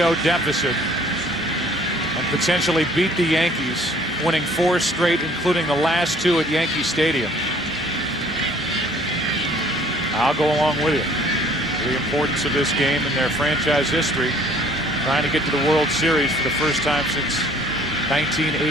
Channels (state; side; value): normal; both; correlation 0.56